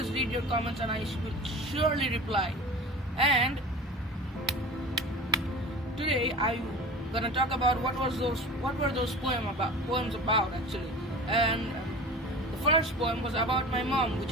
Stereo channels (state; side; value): normal; both; correlation 0.36